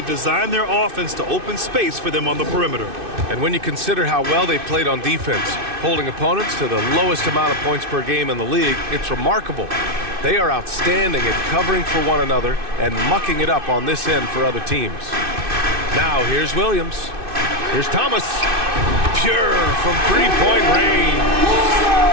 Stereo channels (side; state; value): left; late; 2.6 ms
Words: designed their offense to open space for them on the perimeter. And when you consider how well they played on defense, holding opponents to the lowest amount of points per game in the league, it's remarkable. They are outstanding at covering for one another and mucking it up on this end for other teams. Now here's Williams. Here's Thomas. Pure from three-point range.